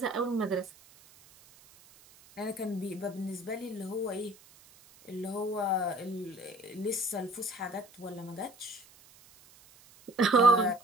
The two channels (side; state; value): right; noise; hiss, 25 dB below the sound